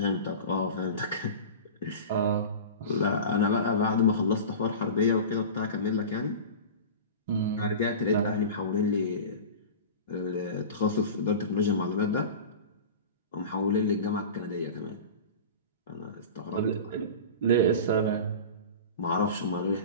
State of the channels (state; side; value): inverted; both; correlation -0.33